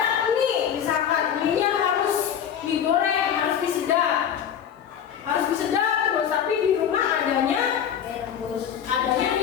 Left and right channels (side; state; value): right; quieter; 8.8 dB